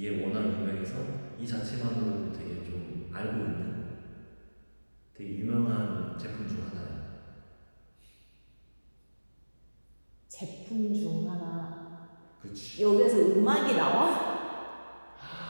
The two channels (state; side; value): inverted; both; correlation -1.00